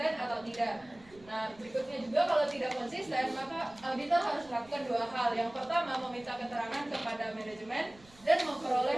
atau tidak. Nah, berikutnya juga kalau tidak konsisten, maka auditor harus melakukan 2 hal. Yang pertama, meminta keterangan kepada manajemen dan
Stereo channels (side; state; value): right; noise; rumble, 25 dB below the sound